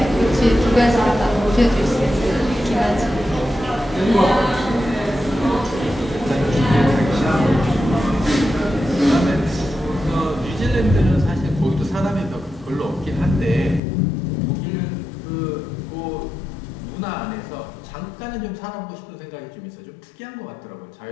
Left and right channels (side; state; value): right; drops out; at 13.8 s